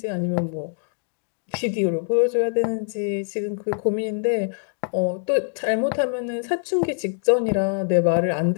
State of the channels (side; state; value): right; silent; digital silence